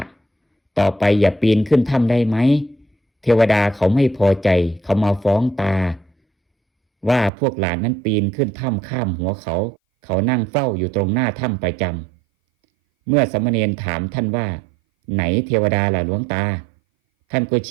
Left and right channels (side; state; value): left; drops out; at 7.3 s